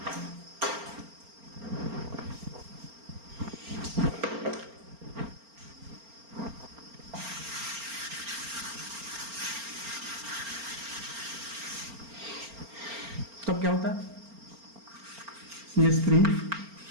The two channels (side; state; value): left; late; 4.4 ms